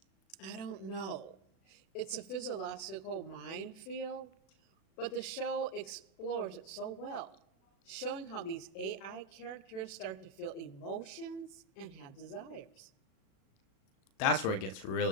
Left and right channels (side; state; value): right; late; 37 ms